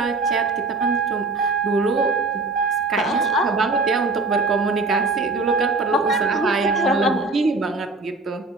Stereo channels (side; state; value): left; quieter; 3.7 dB